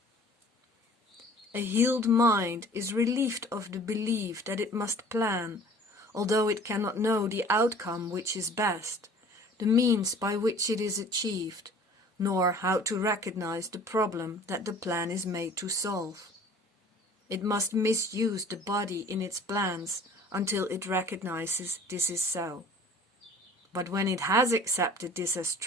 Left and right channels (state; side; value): normal; both; correlation 0.49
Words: A healed mind is relieved of the belief that it must plan, although it cannot know the outcome which is best, the means by which it is achieved, nor how to recognize the problem that the plan is made to solve. It must misuse the body in its plans until it recognizes this is so. But when it has accepted this as